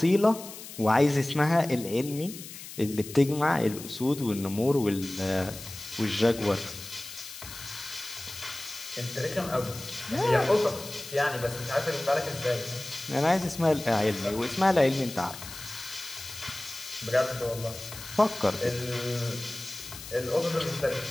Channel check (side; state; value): left; noise; hiss, 13 dB below the sound